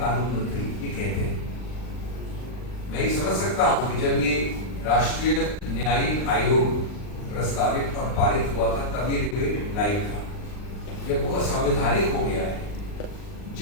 मंत्री ये कहते हैं। मैं ये समझ सकता हूँ कि जब ये राष्ट्रीय न्यायिक आयोग प्रस्तावित और पारित हुआ था तब ये डिबेट लाइव था। जब वो असंवैधानिक हो गया है,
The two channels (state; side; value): late; right; 39 ms